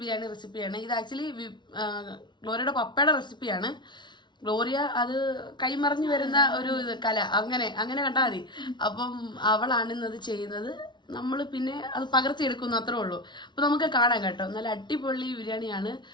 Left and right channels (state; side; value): late; right; 0.22 ms